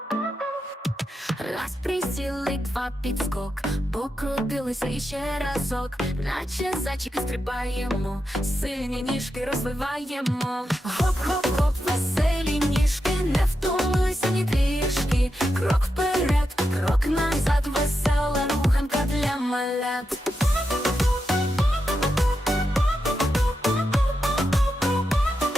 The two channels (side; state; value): both; normal; correlation 0.87